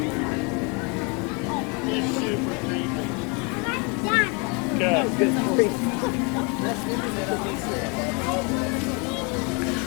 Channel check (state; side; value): quieter; right; 31.8 dB